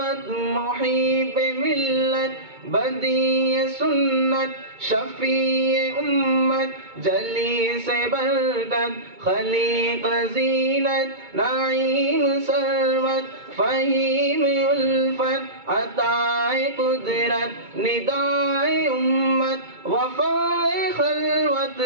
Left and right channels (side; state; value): left; late; 2.2 ms